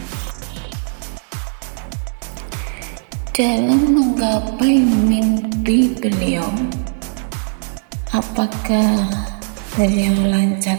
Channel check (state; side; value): silent; left; digital silence